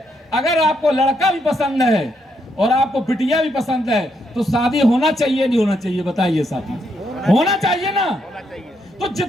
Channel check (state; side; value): normal; both; correlation 0.77